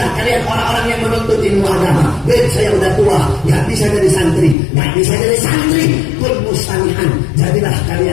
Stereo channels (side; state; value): right; drops out; at 4.5 s